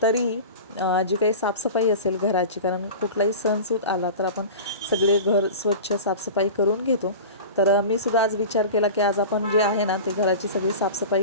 तरीही जी काही साफसफाई असेल घराची, कारण कुठलाही सणसूद आला तर आपण सगळे घर स्वच्छ साफसफाई करून घेतो. तर मी सुद्धा आज विचार केला की आज आपण जे आहे ना ते घराची सगळी साफसफाई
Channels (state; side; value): inverted; both; correlation -0.33